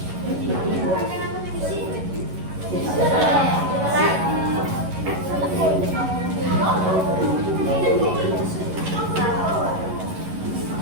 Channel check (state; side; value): late; left; 11 ms